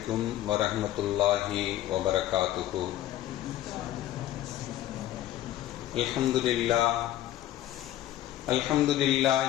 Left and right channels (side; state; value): right; quieter; 13.6 dB